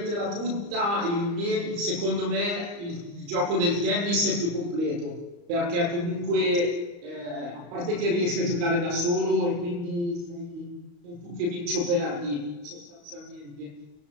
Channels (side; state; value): left; late; 35 ms